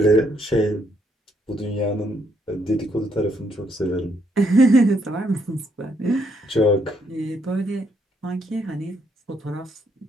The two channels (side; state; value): both; normal; correlation 0.73